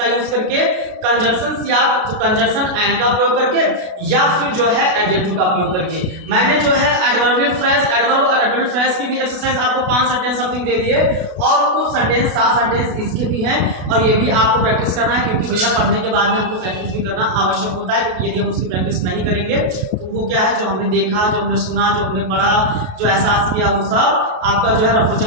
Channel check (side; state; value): left; late; 32 ms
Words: यूज करके? कंजंक्शन या कंजंक्शन एंड का प्रयोग करके, या फिर जो है एडजेक्टिव का प्रयोग करके। मैंने जो है एडवर्बियल फ्रेज, एडवर्ब और एडवर्बियल फ्रेज की भी एक्सरसाइज आपको 5 सेंटेंस समथिंग दे दिए, और कुछ सेंटेंस 7 सेंटेंस इसके भी हैं, और ये भी आपको प्रैक्टिस करना है, क्योंकि भैया पढ़ने के बाद में हमको प्रैक्टिस भी करना आवश्यक होता है। क्योंकि यदि हम उसकी प्रैक्टिस नहीं करेंगे तो वो क्या है, जो हमने देखा, जो हमने सुना, जो हमने पढ़ा, जो एहसास किया, वो सब आपका जो है रफू